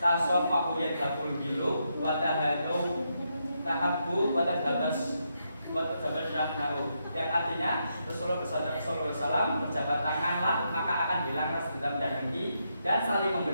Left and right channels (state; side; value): inverted; both; correlation -0.81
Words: tasofahu yadhabul gilu watahadu tahabbu watadhabas watadhabasyahu, yang artinya Rasulullah SAW berjabat tanganlah maka akan hilang rasa dendam dan dengki, dan saling